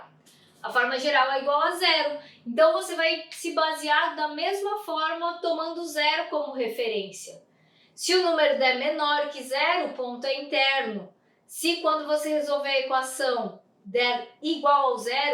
A forma geral é igual a 0, então você vai se basear da mesma forma tomando 0 como referência. Se o número der menor que 0, o ponto é interno. Se quando você resolver a equação der igual ao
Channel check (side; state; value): both; identical; correlation 1.00